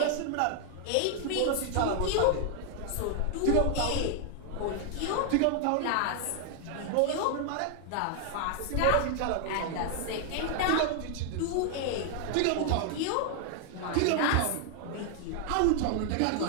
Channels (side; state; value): both; different; correlation 0.00